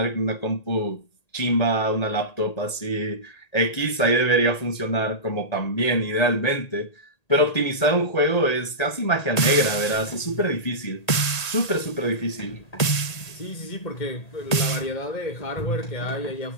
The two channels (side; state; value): right; late; 1.9 ms